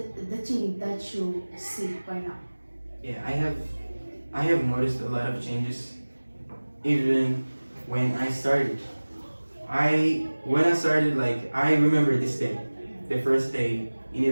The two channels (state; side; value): inverted; both; correlation -1.00